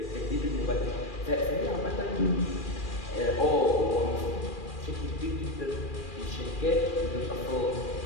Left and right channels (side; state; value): right; late; 2.4 ms